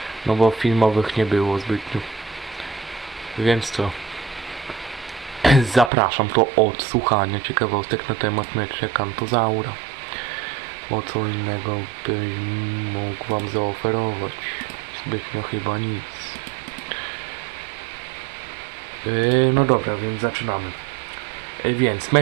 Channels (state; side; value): drops out; left; at 5.9 s